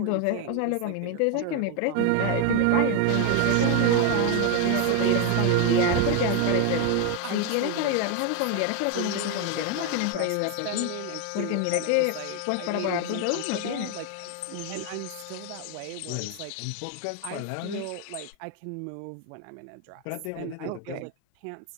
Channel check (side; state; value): both; different; correlation 0.01